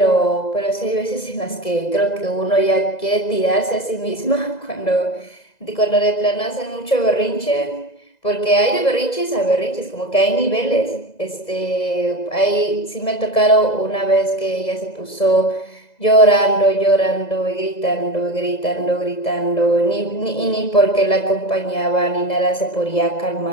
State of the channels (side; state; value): right; late; 2.0 ms